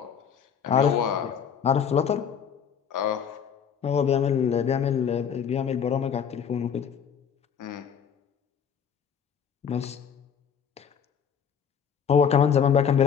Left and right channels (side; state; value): right; quieter; 7.5 dB